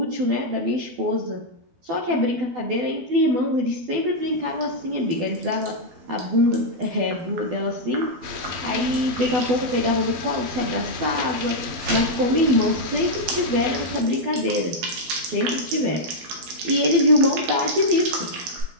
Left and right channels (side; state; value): left; late; 12 ms